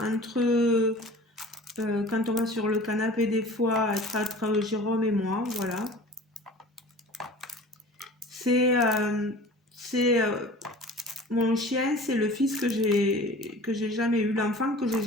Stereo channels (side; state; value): both; normal; correlation 0.42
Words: entre, quand on va sur le canapé des fois, être entre Jérôme et moi, voilà. C'est mon chien, c'est le fils que j'ai jamais eu, l'enfant que j'ai